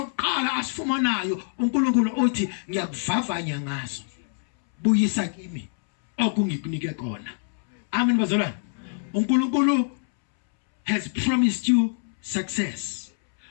asifumanayo uNkulunkulu uthi ngiyakuvavanya ngaso. Buyisa kimi okungikunike khona. Amen bazalwane. uNkulunkulu has promised you success.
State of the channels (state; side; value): silent; right; 62 dB below the other